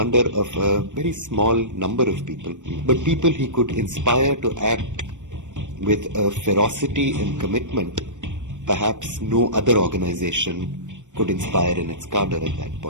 of a very small number of people, but people he could inspire to act with a ferocity and commitment perhaps no other organization could inspire in its cadre at that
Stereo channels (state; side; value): late; left; 0.85 ms